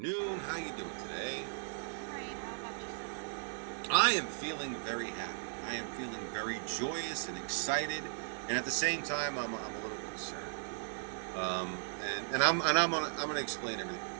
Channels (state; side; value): silent; left; digital silence